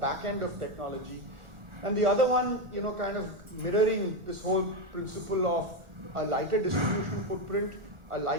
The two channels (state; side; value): late; left; 1.4 ms